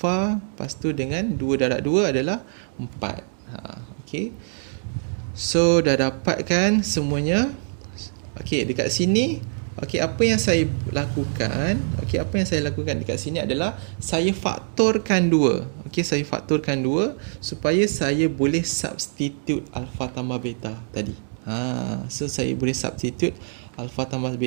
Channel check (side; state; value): left; silent; digital silence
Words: lepas tu dengan 2 darab 2 adalah 4. Okay, so dah dapatkan semuanya. Okey, dekat sini, okey, apa yang saya lakukan? Okey, apa yang saya lakukan dekat sini adalah saya faktorkan 2. Okey, saya faktorkan 2 supaya saya boleh substitute alpha tambah beta tadi. So saya boleh substitute alpha tambah